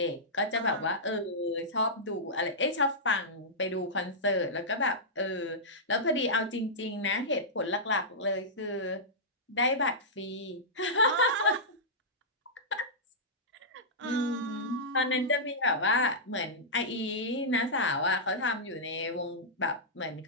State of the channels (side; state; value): both; normal; correlation -0.13